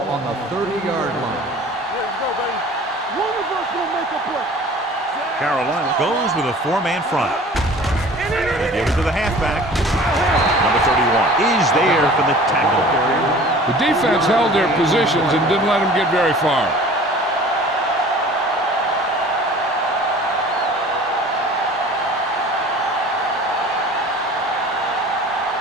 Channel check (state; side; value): normal; both; correlation 0.45